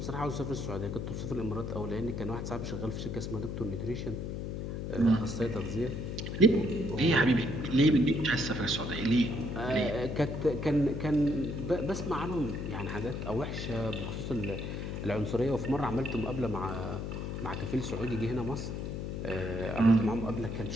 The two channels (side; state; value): left; noise; hum, 4 dB below the sound